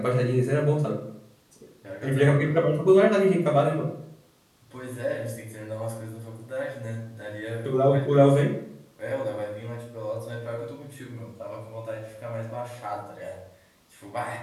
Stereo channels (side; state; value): both; identical; correlation 1.00